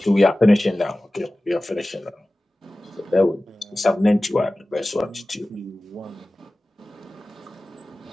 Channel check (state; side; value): normal; both; correlation 0.97